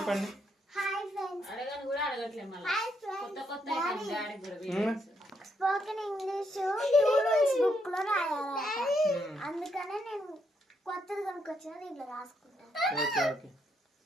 Hi friends. అడగను కూడా అడగట్లేదు మళ్ళీ. Hi friends. కొత్త కొత్త డాడీ కూడా videos. Spoken English two rules book లో రాయాలి. అందుకనే నేను కొత్తది కొనుక్కొచ్చిన దీంట్లో రాసుకుంటాను. Okay okay.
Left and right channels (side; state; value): both; normal; correlation 0.77